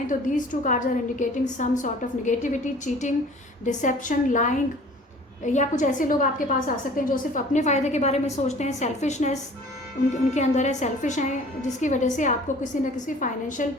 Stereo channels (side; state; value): both; normal; correlation 0.48